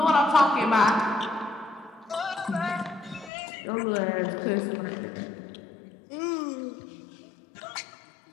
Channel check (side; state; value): right; drops out; at 3.3 s